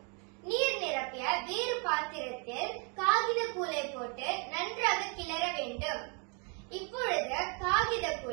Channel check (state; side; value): quieter; left; 36.4 dB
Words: நீர் நிரப்பிய வேறு பாத்திரத்தில் காகித கூளை போட்டு நன்றாக கிளற வேண்டும். இப்பொழுது காகித